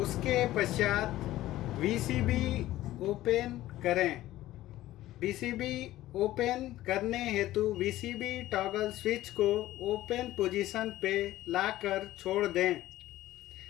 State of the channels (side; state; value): right; quieter; 15.3 dB